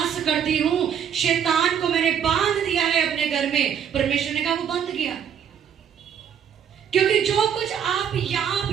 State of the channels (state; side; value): quieter; left; 8.4 dB